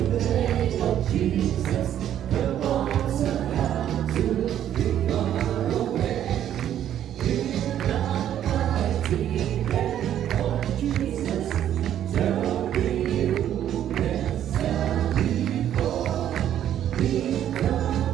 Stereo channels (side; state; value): left; quieter; 10.8 dB